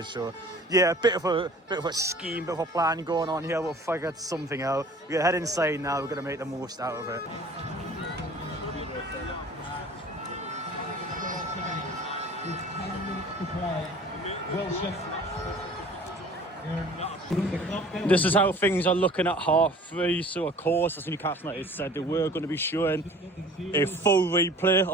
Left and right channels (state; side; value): normal; both; correlation 0.47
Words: So yeah, a bit of a scheme, bit of a plan going on here. We'll figure something out. We're going to head inside now. We're going to make the most out of it. This is how things are looking at 3:30. So of course, as Newcastle United said, they were going to be showing a full replay